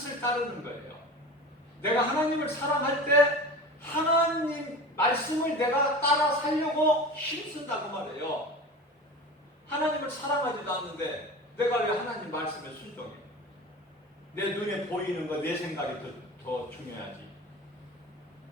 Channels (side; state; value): both; normal; correlation 0.33